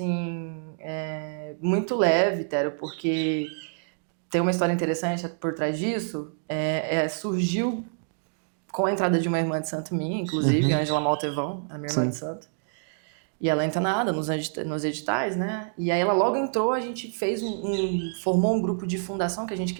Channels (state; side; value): silent; left; digital silence